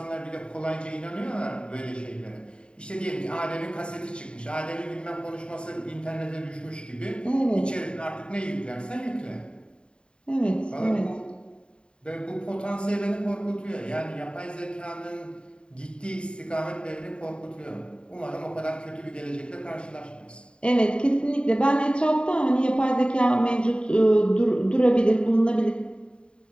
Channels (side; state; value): right; late; 0.052 ms